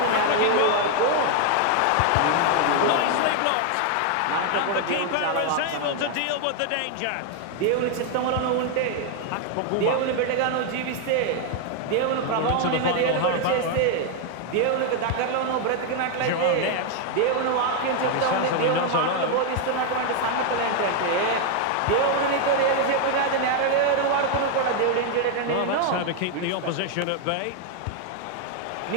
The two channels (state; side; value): different; both; correlation 0.00